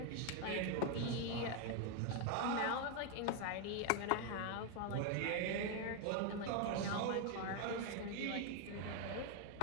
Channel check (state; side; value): different; both; correlation 0.01